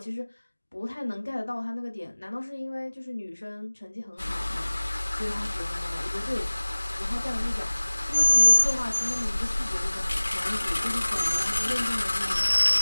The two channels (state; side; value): inverted; both; correlation -1.00